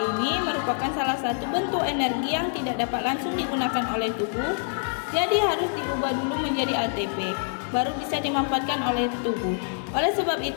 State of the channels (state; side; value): silent; right; 61 dB below the other